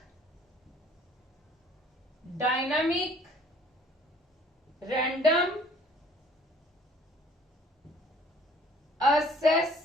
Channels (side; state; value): both; normal; correlation 0.55